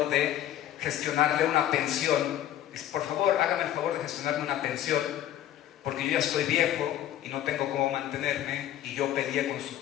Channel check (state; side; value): quieter; right; 11.9 dB